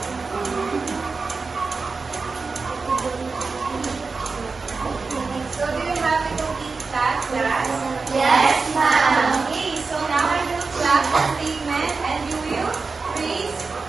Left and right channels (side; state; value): left; quieter; 4.3 dB